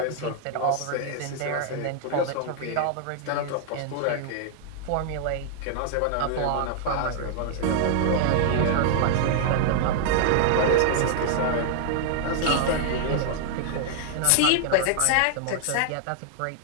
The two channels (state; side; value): different; both; correlation 0.00